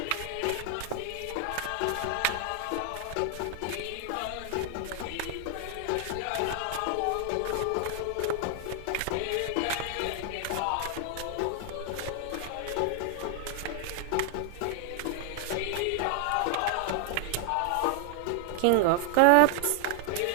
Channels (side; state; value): both; different; correlation 0.00